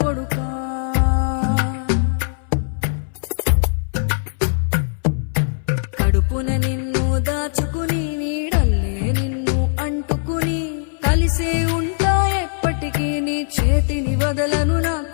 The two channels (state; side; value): silent; right; 62 dB below the other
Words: కొడుకా. కడుపున నిన్ను దాచుకుని నీడల్లే నిన్ను అంటుకుని కలిసే ఉంటా ఎప్పటికీ నీ చేతిని వదలను నా